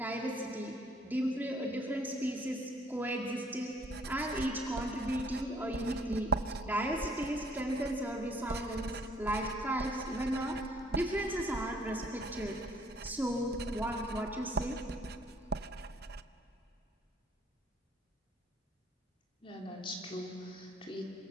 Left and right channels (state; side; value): normal; both; correlation 0.62